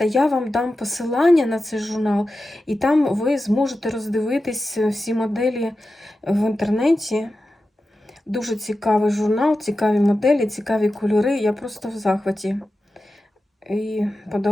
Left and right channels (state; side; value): normal; both; correlation 0.92